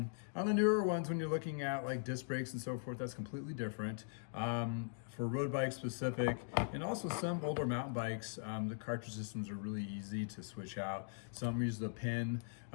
the newer ones, when you're looking at like disc brakes and so forth, that's completely different. For road bikes specific, and also some older mountain bikes, the cartridge systems are really easy to switch out. Some use the pin.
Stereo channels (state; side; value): silent; right; digital silence